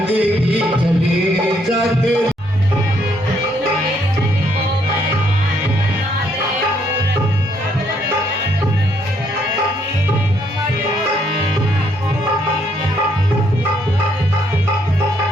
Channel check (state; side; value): normal; both; correlation 0.71